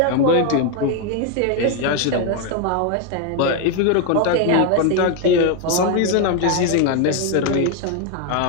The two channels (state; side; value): different; both; correlation 0.01